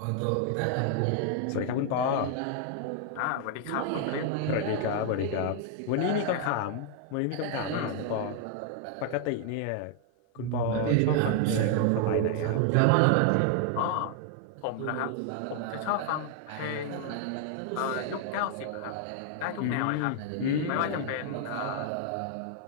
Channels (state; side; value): different; both; correlation 0.00